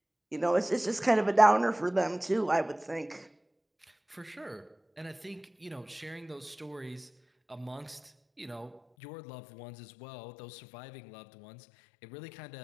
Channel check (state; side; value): drops out; right; at 8.8 s